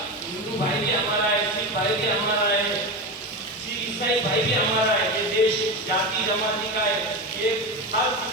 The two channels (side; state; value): both; normal; correlation 0.20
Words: ہندو بھائی بھی ہمارا ہے، سکھ بھائی بھی ہمارا ہے، عیسائی بھائی بھی ہمارا ہے. یہ دیش جاتی جماعتی کا ہے. یہ ہر